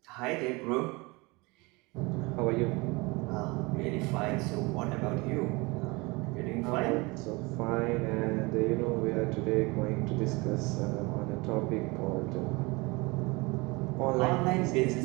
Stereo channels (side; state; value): left; quieter; 25.3 dB